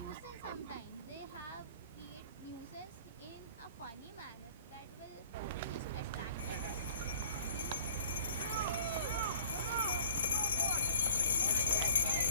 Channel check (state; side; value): inverted; both; correlation -0.51